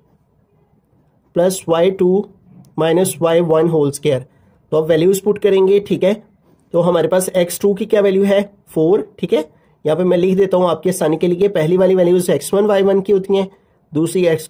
plus y2 minus y1 whole square. तो अब वैल्यूज पुट करेंगे। ठीक है, तो हमारे पास x2 की क्या वैल्यू है 4, ठीक है, यहाँ पे मैं लिख देता हूँ आपके आसानी के लिए। पहली वाली वैल्यूज x1 y1 की होती हैं, दूसरी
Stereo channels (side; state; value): both; identical; correlation 1.00